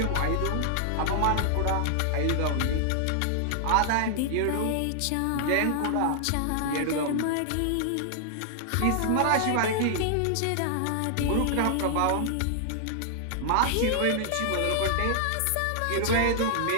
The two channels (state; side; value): different; both; correlation -0.01